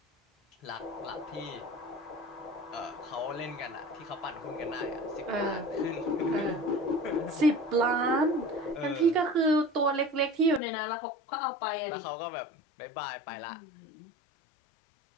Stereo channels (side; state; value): right; drops out; at 10.6 s